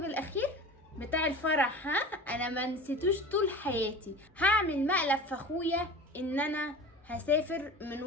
الاخير بتاع الفرح؟ ها، انا ما نسيتوش طول حياتي. هعمل مقلب في اخويا ان انا هسافر من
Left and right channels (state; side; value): normal; both; correlation 0.35